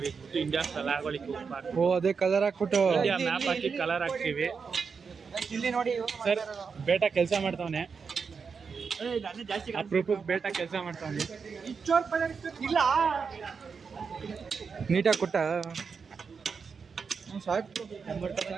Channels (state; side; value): quieter; left; 5.6 dB